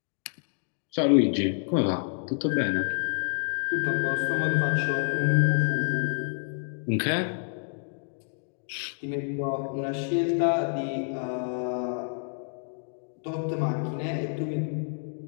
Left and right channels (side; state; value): right; silent; 59 dB below the other